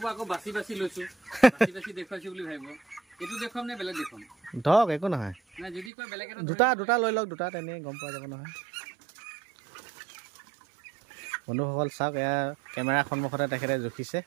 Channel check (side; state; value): left; drops out; at 5.9 s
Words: আকৌ বাচি বাচি লৈছোঁ দেখুৱাইছোঁ বুলি ভাবিব এইটো দেখুৱাম নে বেলেগ দেখুৱাম ধৰক একো নহয় যদি কয় বেলেগ দুটা লৈ লওক দুটা তেনেই গম পোৱা যাব নহয় বন্ধুসকল চাওক এয়া কেমেৰাৰ সন্মুখতে তেখেতে জুখিছে